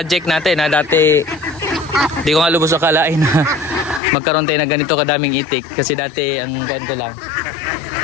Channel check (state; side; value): drops out; right; at 4.0 s